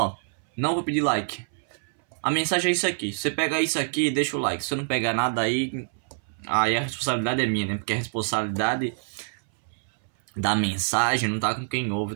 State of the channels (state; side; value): silent; left; 61 dB below the other